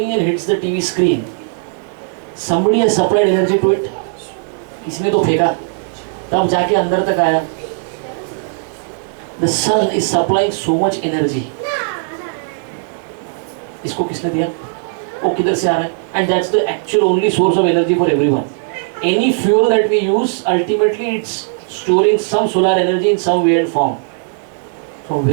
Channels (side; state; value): left; silent; digital silence